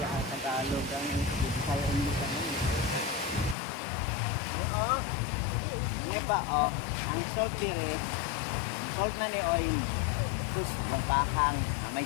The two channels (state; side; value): drops out; right; at 3.6 s